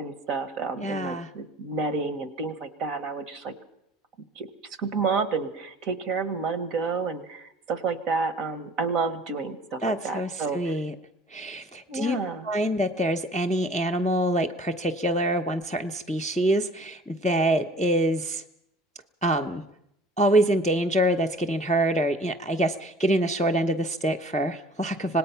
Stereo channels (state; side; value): normal; both; correlation 0.49